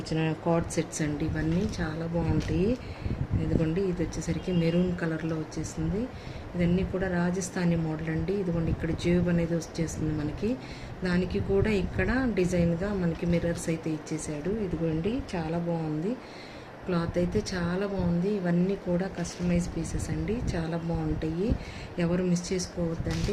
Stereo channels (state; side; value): identical; both; correlation 1.00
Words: కార్డ్ సెట్స్ అండి. ఇవన్నీ చాలా బాగుంటాయి. ఇదిగోండి, ఇది వచ్చేసరికి మెరూన్ కలర్లో వచ్చేసింది. ఇవన్నీ కూడా రాజస్థానీ మోడల్ అండి. ఇదిగోండి, ఇక్కడ జేబ్ అనేది వచ్చేస్తుంది మనకి. దానికి కూడా ఇక్కడ డిజైన్గా మనకి మిర్రర్స్ అయితే ఇచ్చేసాడు. ఇదిగోండి, చాలా బాగుంది. క్లాత్ అయితే చాలా బాగుంది. ఇవన్నీ కూడా కస్టమైజ్ పీసెస్ అండి, చాలా బాగుంటాయి. ఎవరు మిస్ చేసుకోవద్దండి.